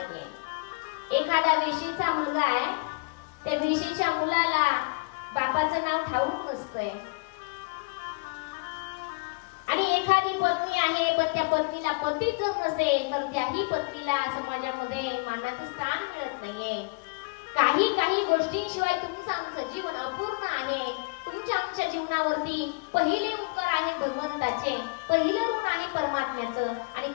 एखादा वेशीचा मुलगा आहे, त्या वेशीच्या मुलाला बापाचं नाव ठाऊक नसतंय. आणि एखादी पत्नी आहे, पण त्या पत्नीला पतीच जर नसेल तर त्याही पत्नीला समाजामध्ये मानाचं स्थान मिळत नाहीये. काही गोष्टींशिवाय तुमचं आमचं जीवन अपूर्ण आहे. तुमच्या आमच्या जीवनावरती पहिले उपकार आहे भगवंताचे, पहिलं ऋण आहे परमात्म्याचं. आणि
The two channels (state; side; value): quieter; right; 30.3 dB